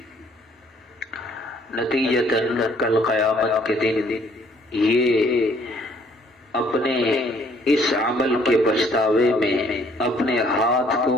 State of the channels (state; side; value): normal; both; correlation 0.62